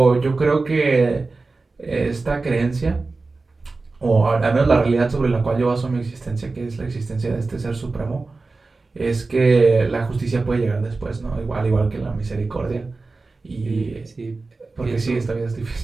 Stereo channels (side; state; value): left; quieter; 3.7 dB